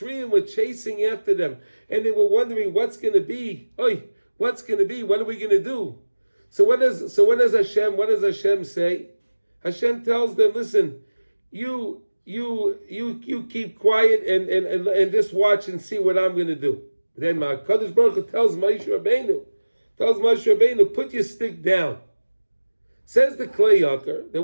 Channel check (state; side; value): inverted; both; correlation -1.00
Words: were chasing after them, and they were wondering what's going to be. What's going to be? What are we going to do? So what does Hashem say? Hashem tells them, listen, you keep quiet and just watch and see what I'm going to do. Then Kadosh Baruch Hu tells Moshe Rabbeinu, put your stick down. Says the Kleyoker that